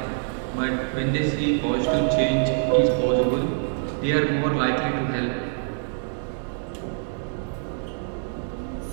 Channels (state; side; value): silent; left; 62 dB below the other